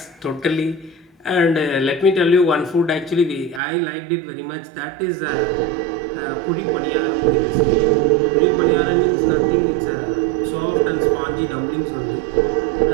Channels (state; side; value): drops out; left; at 3.6 s